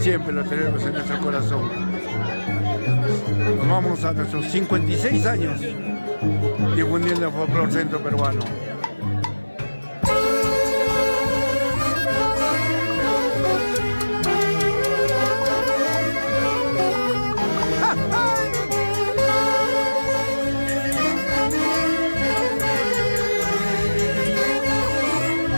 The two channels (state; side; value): inverted; both; correlation -1.00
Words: lo tenemos en nuestro corazón. Nos vamos a nuestros 56 años difundiendo el folclore centro peruano.